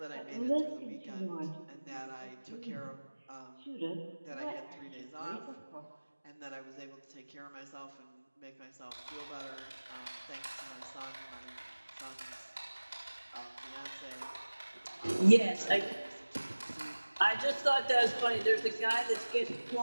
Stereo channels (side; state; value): both; inverted; correlation -1.00